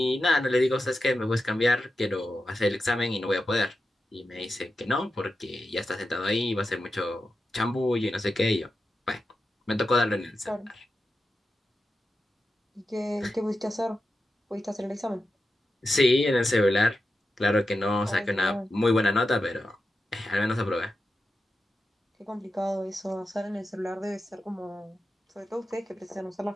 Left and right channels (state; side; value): normal; both; correlation 0.90